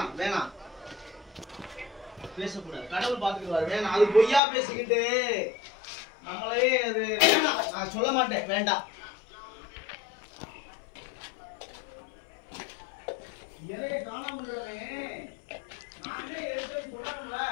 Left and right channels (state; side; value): drops out; right; at 4.4 s